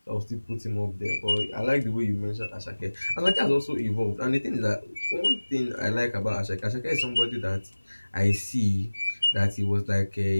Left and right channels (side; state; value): both; inverted; correlation -1.00